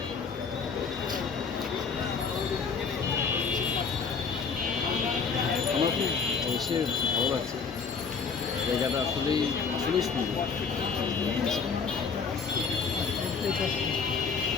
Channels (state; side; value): quieter; right; 5.5 dB